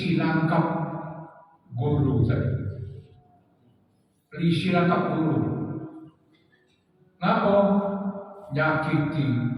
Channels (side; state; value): both; identical; correlation 1.00